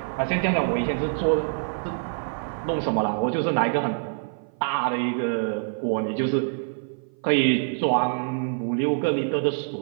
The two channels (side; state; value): left; silent; 56 dB below the other